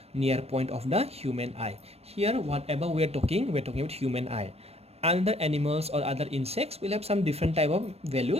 near point of the human eye. Here whatever we're talking about human eye. Other animals or other insects will have some different type of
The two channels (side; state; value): left; late; 0.30 ms